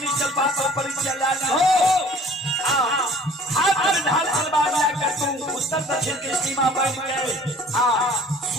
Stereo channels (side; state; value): both; normal; correlation 0.50